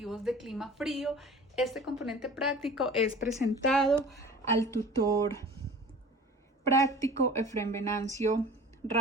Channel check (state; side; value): normal; both; correlation 0.42